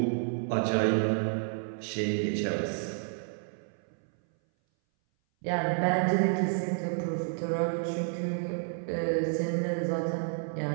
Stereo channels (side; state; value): left; silent; 58 dB below the other